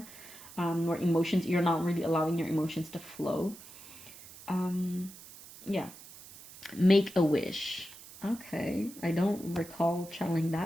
where emotions, you're not really allowing your emotions to flow. Yeah. Make a wish. Okay, I don't recall channeling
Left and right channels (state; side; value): noise; right; hiss, 18 dB below the sound